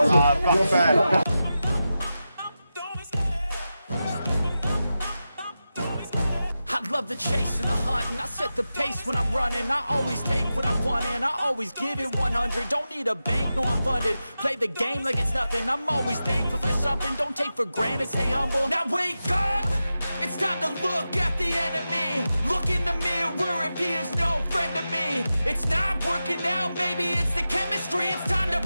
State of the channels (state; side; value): inverted; both; correlation -0.92